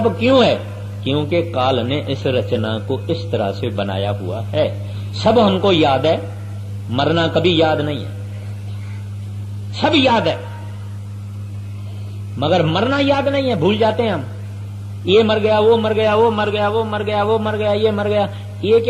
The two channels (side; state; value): both; identical; correlation 1.00